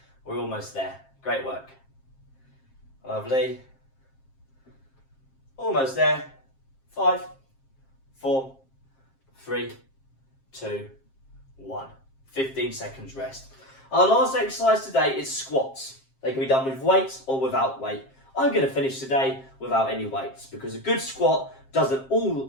We're almost there. Great work. Lovely. Almost there. 5, 4, 3, 2, 1. 15 seconds rest. Our last exercise today is squats. They can be done with weights or without weight. I'm going to finish today without any weights because a good squat doesn't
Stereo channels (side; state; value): right; late; 7.5 ms